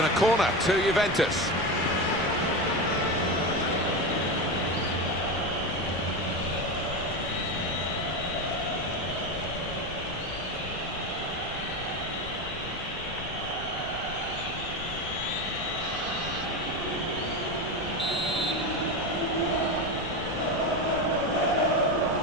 a corner to Juventus.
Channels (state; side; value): noise; left; rumble, 11 dB below the sound